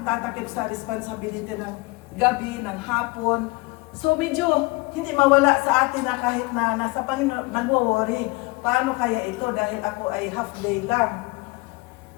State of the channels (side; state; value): right; quieter; 24.8 dB